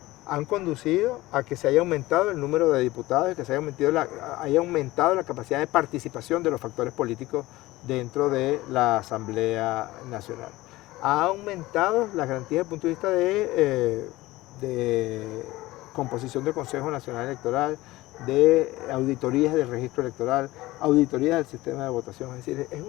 Han conducido a que se haya aumentado el número de diputados y que se haya aumentado la capacidad de participación de los factores políticos dentro de la Asamblea Nacional. Ha aumentado las garantías desde el punto de vista de composición del Consejo Nacional Electoral, de auditorías del registro electoral, auditorías del sistema de votación. Es decir, es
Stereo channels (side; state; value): right; quieter; 18.5 dB